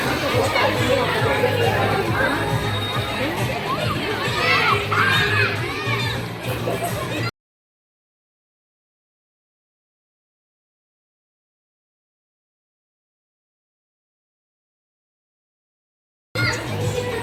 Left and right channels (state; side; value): identical; both; correlation 1.00